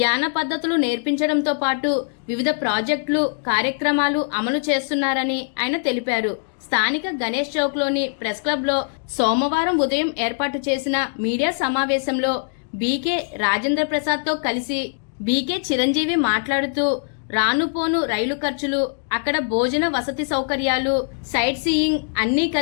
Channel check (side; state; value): right; silent; digital silence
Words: పద్ధతులు నేర్పించడంతో పాటు వివిధ ప్రాజెక్టులు, కార్యక్రమాలు అమలు చేస్తున్నారని ఆయన తెలిపారు. స్థానిక గణేష్ చౌక్లోని ప్రెస్ క్లబ్లో సోమవారం ఉదయం ఏర్పాటు చేసిన మీడియా సమావేశంలో బీకే రాజేంద్ర ప్రసాద్తో కలిసి బీకే చిరంజీవి మాట్లాడుతూ రానుపోను రైలు ఖర్చులు, అక్కడ భోజన వసతి సౌకర్యాలు, సైట్ సీయింగ్ అన్నీ